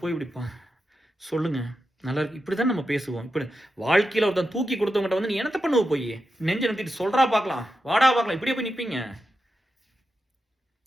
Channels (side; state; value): both; normal; correlation 0.89